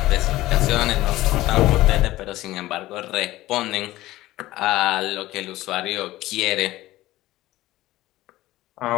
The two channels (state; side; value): quieter; right; 16.8 dB